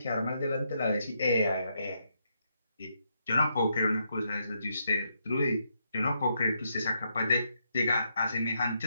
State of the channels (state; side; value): inverted; both; correlation -0.79